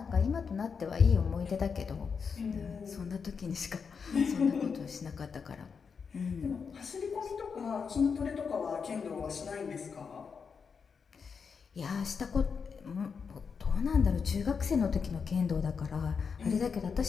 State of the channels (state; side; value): quieter; right; 5.9 dB